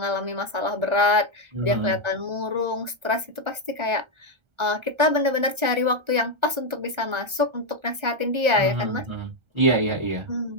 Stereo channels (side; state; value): left; late; 1.3 ms